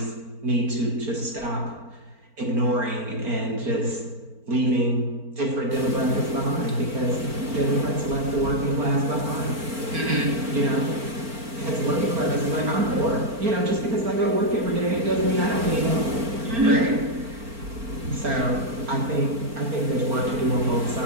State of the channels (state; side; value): late; left; 4.4 ms